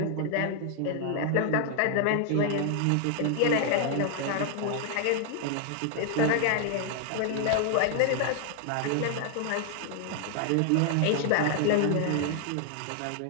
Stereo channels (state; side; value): different; both; correlation 0.00